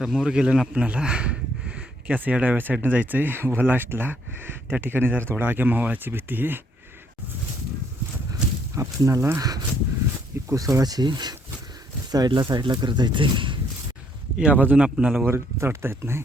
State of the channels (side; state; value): both; normal; correlation 0.68